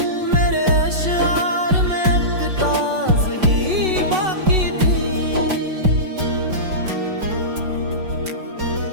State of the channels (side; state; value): left; late; 5.4 ms